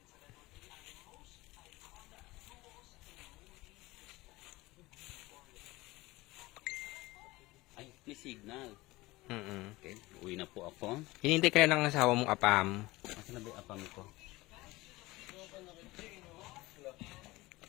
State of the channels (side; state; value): right; quieter; 20.3 dB